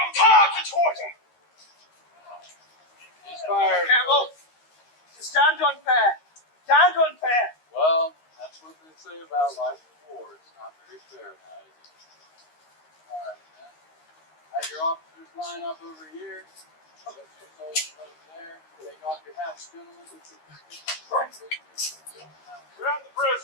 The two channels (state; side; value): late; right; 13 ms